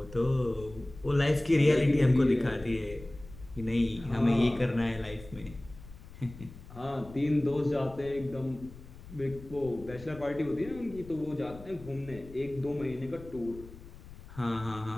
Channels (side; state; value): left; noise; rumble, 17 dB below the sound